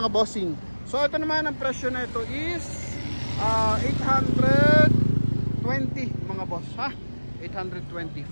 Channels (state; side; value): inverted; both; correlation -1.00